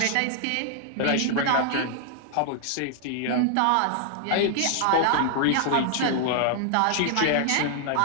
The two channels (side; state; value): both; different; correlation 0.00